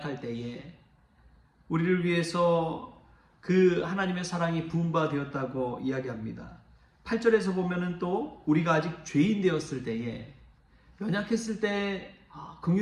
우리를 위해서 그 하나님의 사랑이 부음받았다고 이야기합니다. 8절에서 보면은 또 우리가 아직 죄인 되었을 때에 연약했을 때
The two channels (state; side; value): identical; both; correlation 1.00